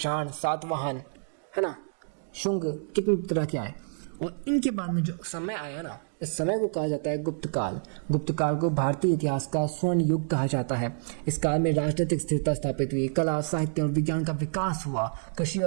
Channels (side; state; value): left; silent; digital silence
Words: सातवाहन, है ना, शुंग, कितने तरह के आए। और इनके बाद में जो समय आया ना, इस समय को कहा जाता है गुप्त काल को भारतीय इतिहास का स्वर्ण युग कहा जाता है। इस काल में राजनीतिक स्थिरता स्थापित हुई, कला, साहित्य और विज्ञान का विकास हुआ, कृषि